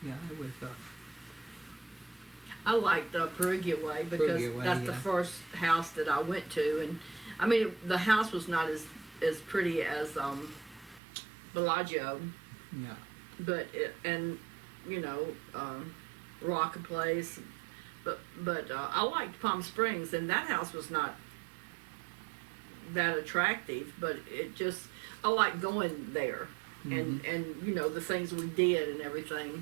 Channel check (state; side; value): drops out; left; at 11.0 s